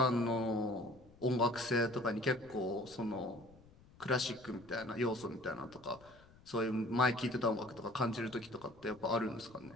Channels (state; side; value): noise; left; rumble, 25 dB below the sound